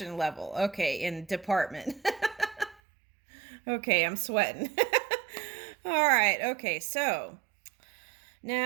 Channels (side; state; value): left; drops out; at 2.8 s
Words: level. Okay, in department. Okay, I'm sweating. All right. Okay, so